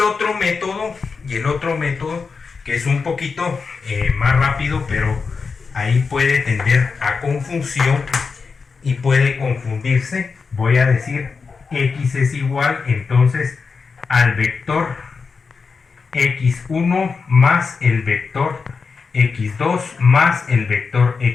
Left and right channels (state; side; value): quieter; right; 5.0 dB